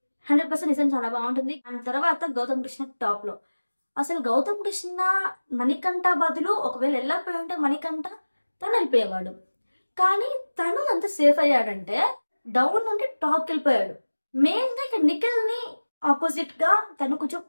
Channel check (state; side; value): inverted; both; correlation -1.00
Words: 100% నిజం చాలా బాగుంటుంది. అండ్ తర్వాత గౌతమ్ కృష్ణ టాప్ లో. అసలు గౌతమ్ కృష్ణ మణికంఠ బదులు ఒకవేళ వెళ్ళకపోయి ఉంటే మణికంఠ తను వెళ్ళిపోయేవాడు. కానీ తను అంత సేఫ్ అయ్యాడంటే డౌన్ నుండి టాప్కి వెళ్ళిపోయాడు. మెయిన్ గా ఇక్కడ నిఖిల్ ని ఆపోజిట్ గా తను కొంచెం